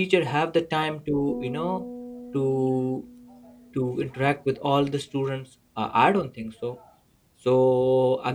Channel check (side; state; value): both; identical; correlation 1.00